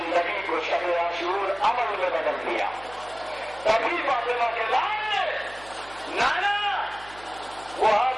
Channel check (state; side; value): noise; right; hum, 22 dB below the sound